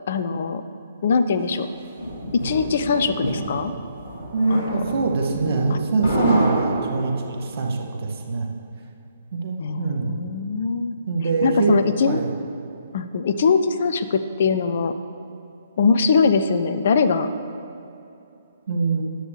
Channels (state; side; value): inverted; both; correlation -0.72